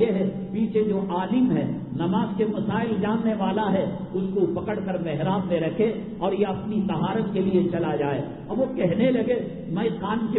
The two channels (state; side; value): identical; both; correlation 1.00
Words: ہے پیچھے جو عالم ہے، نماز کے مسائل جاننے والا ہے، اس کو پکڑ کر محراب میں رکھے اور یہ اپنی طہارت کے لیے چلا جائے. اب وہ کہنے لگے میں خان